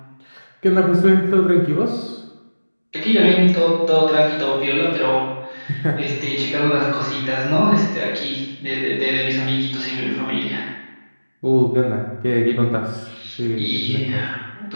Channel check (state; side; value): inverted; both; correlation -1.00